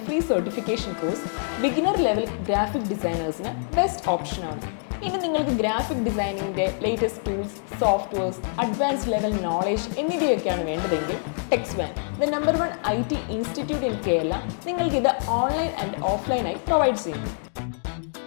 free certification course beginner level graphic ഡിസൈനേഴ്സിന് best ഓപ്ഷനാണ്. ഇനി നിങ്ങൾക്ക് graphic ഡിസൈനിങ്ങിൻ്റെ latest tools, softwares, advanced level knowledge എന്നിവയൊക്കെയാണ് വേണ്ടതെങ്കിൽ Tecswan, the #1 IT institute in Kerala, നിങ്ങൾക്കിത് ഓൺലൈൻ ആൻഡ് ഓഫ്ലൈനായി പ്രൊവൈഡ് ചെയ്യുന്നു.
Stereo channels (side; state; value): right; silent; digital silence